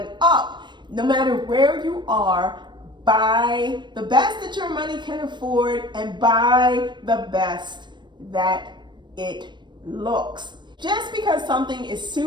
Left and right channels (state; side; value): late; left; 0.22 ms